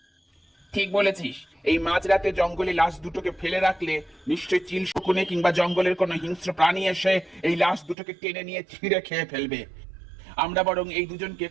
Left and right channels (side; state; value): left; drops out; at 8.0 s